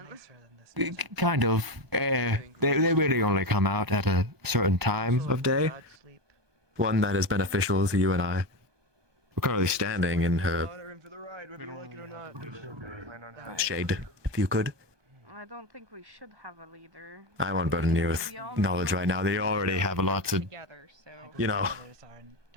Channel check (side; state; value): left; late; 1.2 ms